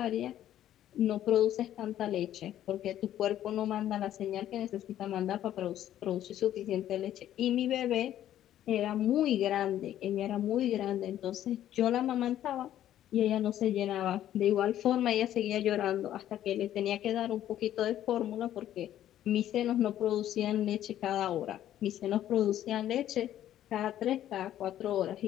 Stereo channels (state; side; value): quieter; right; 12.0 dB